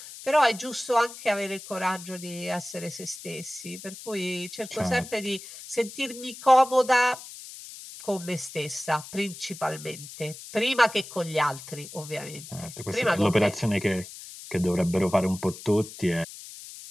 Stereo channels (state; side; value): noise; left; hiss, 14 dB below the sound